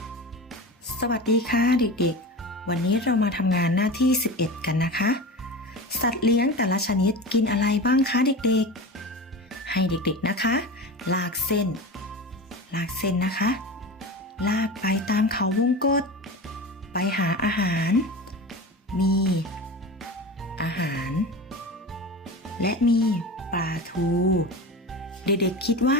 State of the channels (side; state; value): both; normal; correlation 0.29